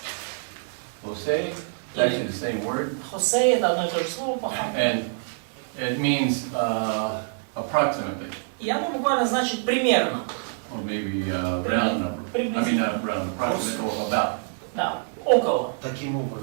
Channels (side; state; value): left; silent; digital silence